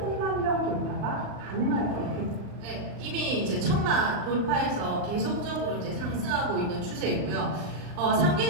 명 돌파가 가능할 것입니다. 네, 이미 이제 1000만 돌파해서 계속적으로 이제 상승하고 있는 추세이고요.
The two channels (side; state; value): left; late; 39 ms